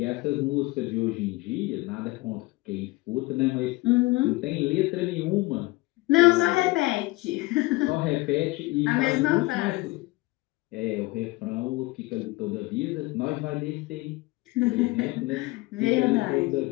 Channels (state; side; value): quieter; right; 22.0 dB